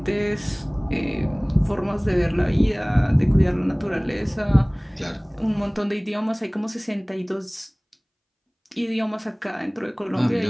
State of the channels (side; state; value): both; identical; correlation 1.00